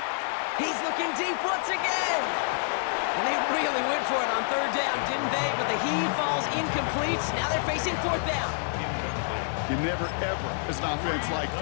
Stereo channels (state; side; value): silent; right; digital silence